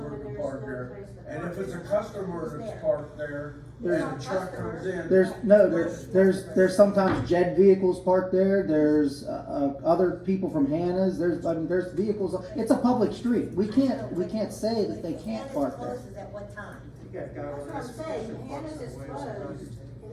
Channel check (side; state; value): both; identical; correlation 1.00